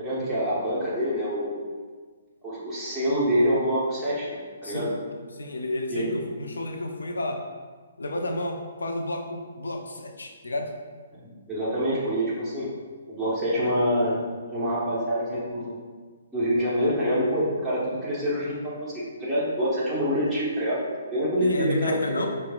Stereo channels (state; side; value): inverted; both; correlation -0.61